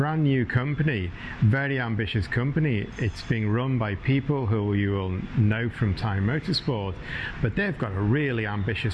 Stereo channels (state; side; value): identical; both; correlation 1.00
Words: new company, very ambitious company. It's being run by people who you will know from Thai Motorsport, but they've got a really